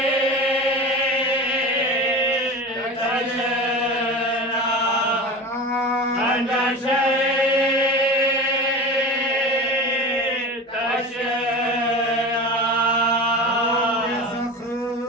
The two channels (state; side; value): normal; both; correlation 0.31